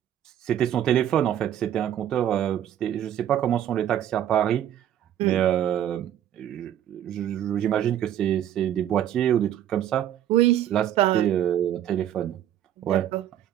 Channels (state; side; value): quieter; left; 10.9 dB